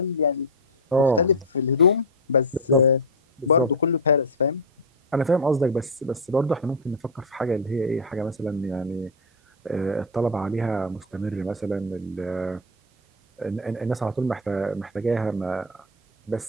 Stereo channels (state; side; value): normal; both; correlation 0.06